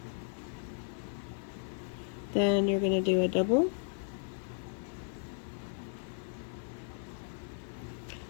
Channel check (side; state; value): right; silent; 54 dB below the other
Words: then you're going to do a double,